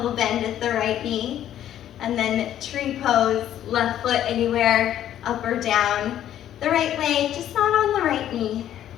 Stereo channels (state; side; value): quieter; right; 11.4 dB